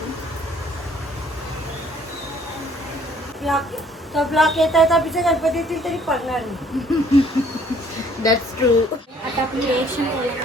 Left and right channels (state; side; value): normal; both; correlation 0.59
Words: ब्लॉक येत आहे तर पिछे गणपती येतील तरी पडणार नाही. That's true. आता आपली रिएक्शन